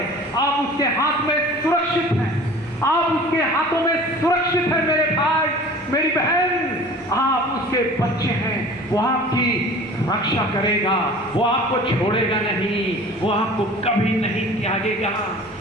आप उसके हाथ में सुरक्षित हैं, आप उसके हाथों में सुरक्षित हैं। मेरे भाई, मेरी बहन, आप उसके बच्चे हैं, वो आपकी रक्षा करेगा, वो आपको छोड़ेगा नहीं, वो आपको कभी नहीं त्यागेगा।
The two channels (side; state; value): both; normal; correlation 0.43